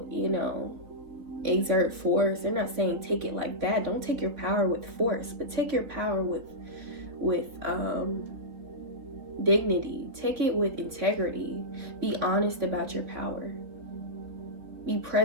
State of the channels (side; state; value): left; late; 4.1 ms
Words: exert force. They're not saying take it like that. Don't take your power with force, but take your power with dignity. Take it with integrity. Be honest about your power. Be